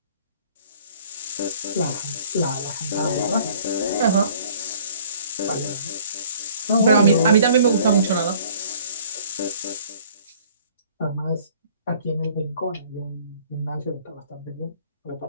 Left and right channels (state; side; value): inverted; both; correlation -0.55